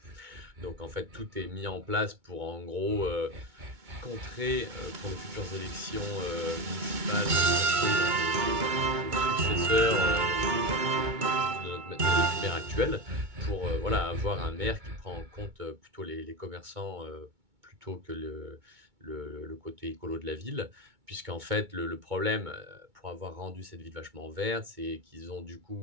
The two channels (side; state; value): left; late; 2.2 ms